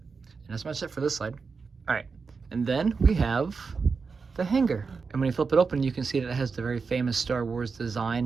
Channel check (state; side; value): quieter; left; 5.0 dB